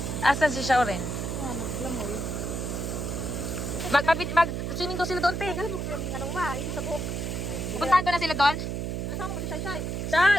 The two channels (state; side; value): noise; right; hum, 3 dB below the sound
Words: Asan si Shauren? Naglamoy. Mag-swimming daw sila doon, te. Anong ma? Ito sa buhok. Puntahan ko na sila doon. Kasama mo si Shai Shai.